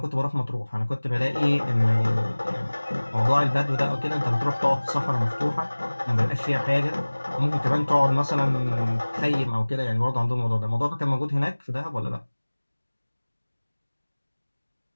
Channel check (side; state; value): both; inverted; correlation -1.00